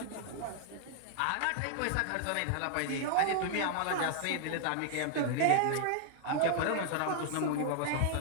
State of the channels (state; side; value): different; both; correlation 0.00